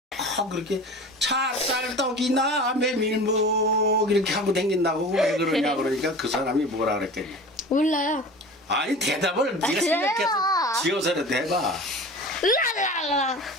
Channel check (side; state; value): both; normal; correlation 0.36